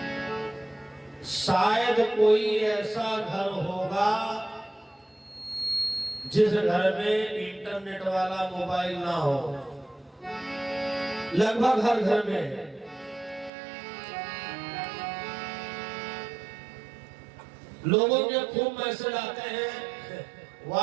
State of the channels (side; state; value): left; drops out; at 13.5 s